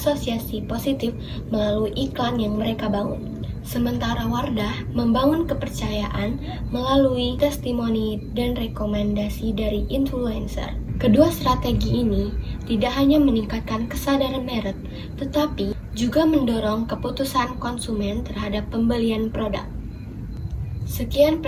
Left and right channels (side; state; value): both; identical; correlation 1.00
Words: positif melalui iklan yang mereka bangun. Sementara Wardah membangun kepercayaan melalui testimoni dan rekomendasi dari influencer. Kedua strategi ini tidak hanya meningkatkan kesadaran merek, tetapi juga mendorong keputusan konsumen terhadap pembelian produk. Sekian